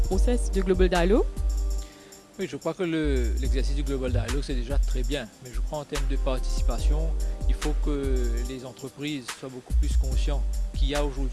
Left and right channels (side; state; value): both; identical; correlation 1.00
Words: de Global Dialogue? Oui, je crois que l'exercice du Global Dialogue, c'est déjà très bien. Mais je crois en termes de participation, il faut que les entreprises soient beaucoup plus conscientes qu'il y a